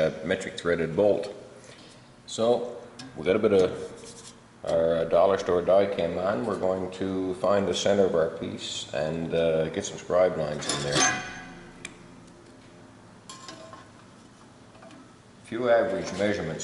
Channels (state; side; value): identical; both; correlation 1.00